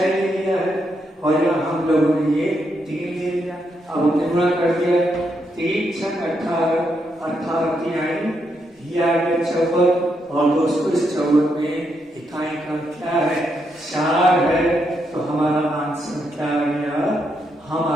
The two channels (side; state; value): both; normal; correlation 0.80